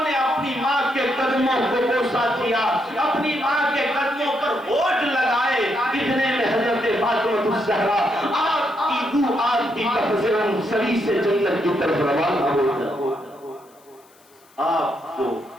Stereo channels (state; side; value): noise; left; hiss, 30 dB below the sound